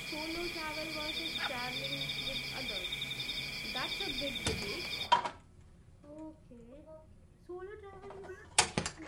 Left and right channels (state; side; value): identical; both; correlation 1.00